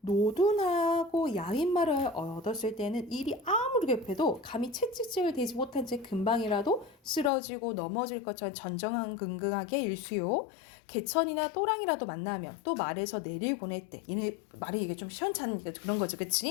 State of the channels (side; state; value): right; drops out; at 7.3 s